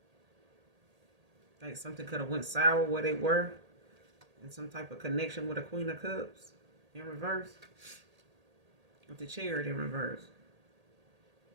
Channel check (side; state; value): left; late; 1.8 ms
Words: Like something could have went sour where they were. And some type of connection with a Queen of Cups in reverse. With the Chariot in reverse.